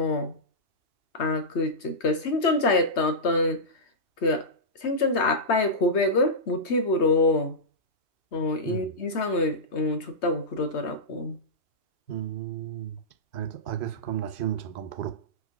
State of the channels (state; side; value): late; right; 3.2 ms